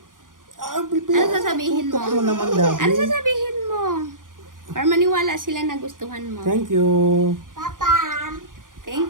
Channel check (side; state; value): left; late; 0.89 ms